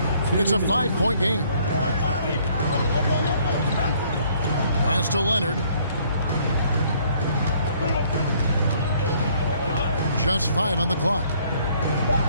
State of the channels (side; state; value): both; inverted; correlation -0.63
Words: It's a 5-point game. Pass to Leonard. Just 5 on the clock.